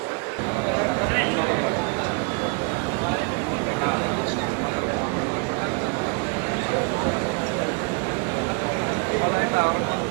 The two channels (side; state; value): left; quieter; 34.7 dB